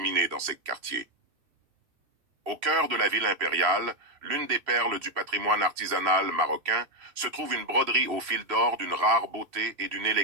dans ces quartiers. Au cœur de la ville impériale, l'une des perles du patrimoine artisanal marocain, se trouve une broderie au fil d'or d'une rare beauté et d'une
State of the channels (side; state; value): left; late; 2.7 ms